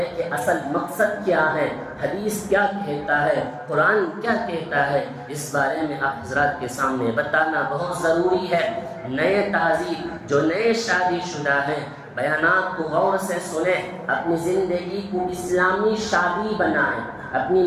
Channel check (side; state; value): both; identical; correlation 1.00